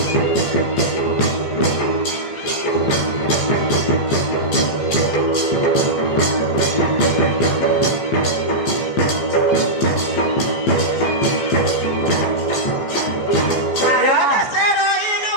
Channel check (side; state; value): right; late; 15 ms